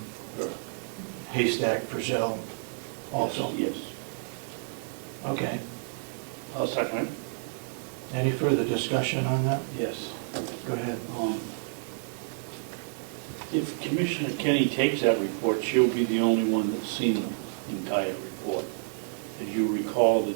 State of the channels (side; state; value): left; silent; digital silence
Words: Haystack Frizzell also? Yes. Okay. I'll second it. Any further discussion on that? Yes. Go ahead. If Commissioner Kenney takes that report, she'll be the only one that's seen the entire report. As you recall, the